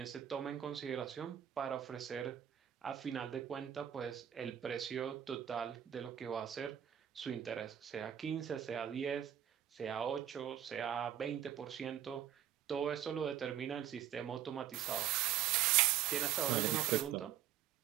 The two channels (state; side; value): quieter; left; 10.8 dB